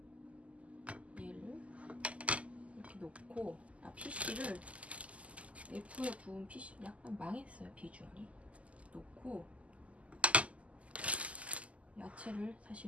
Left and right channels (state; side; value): late; left; 0.065 ms